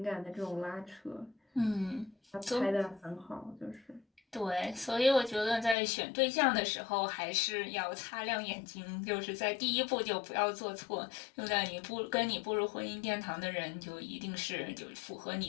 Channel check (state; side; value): drops out; right; at 5.8 s